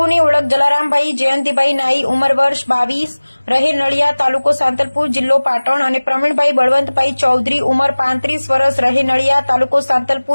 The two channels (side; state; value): both; inverted; correlation -1.00